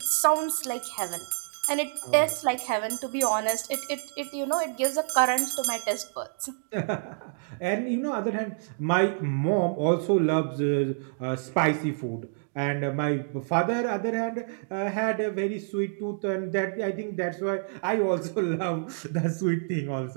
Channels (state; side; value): silent; left; digital silence